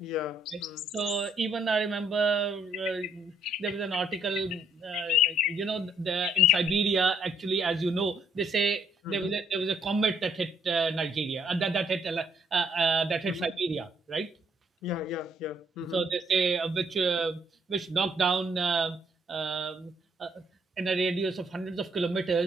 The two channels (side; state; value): both; normal; correlation 0.68